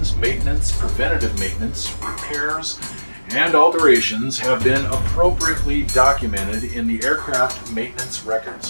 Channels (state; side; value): inverted; both; correlation -1.00